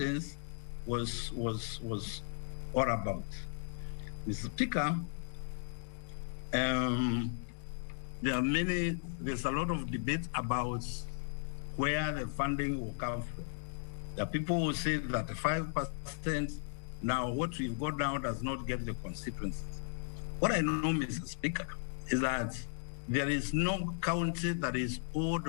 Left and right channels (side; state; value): right; silent; digital silence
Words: was all about. Mr. Speaker, there's a lot of debate about where the funding will come from. There are people who say that the 5%, now what we've got now does not get the constituencies. What I know, Mr. Speaker, is that there is no county that is